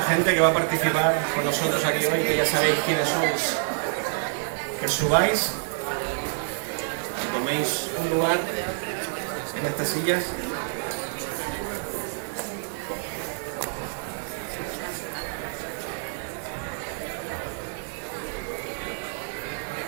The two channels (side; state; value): left; silent; 60 dB below the other